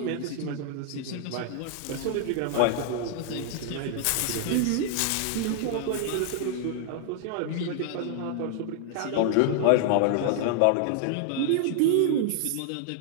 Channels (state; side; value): different; both; correlation 0.00